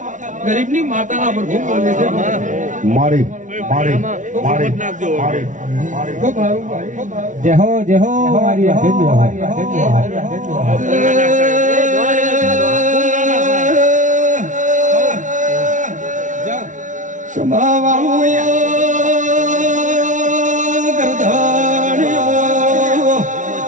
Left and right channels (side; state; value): left; late; 0.37 ms